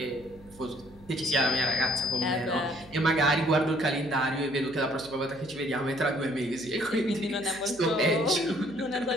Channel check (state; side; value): noise; right; hum, 23 dB below the sound